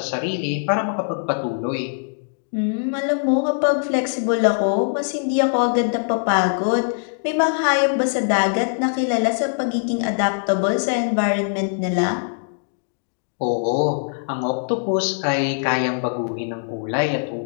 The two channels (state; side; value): silent; right; digital silence